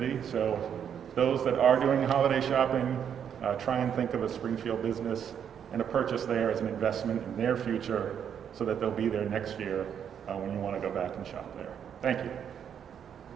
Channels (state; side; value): quieter; left; 8.4 dB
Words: So those that are doing holiday shopping, try and think of a Springfield business and a purchase there as an investment in their future so that they'll be there next year when you want to go back and shop there. Thank you.